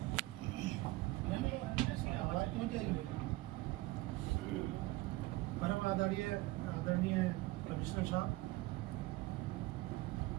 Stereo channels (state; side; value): quieter; left; 20.0 dB